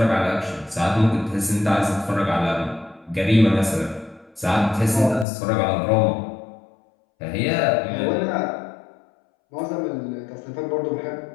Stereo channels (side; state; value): right; drops out; at 5.2 s